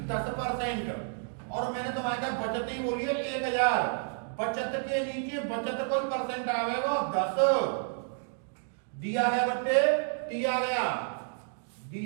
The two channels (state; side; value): silent; left; 56 dB below the other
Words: 10%। और मैंने तुम्हारे का बचत ही बोली है 1000। बचत के नीचे बचत कोई परसेंट आवेगा 10 दिया गया बच्चे, दिया गया